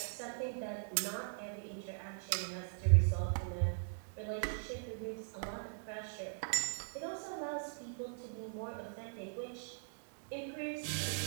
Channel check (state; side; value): silent; left; 51 dB below the other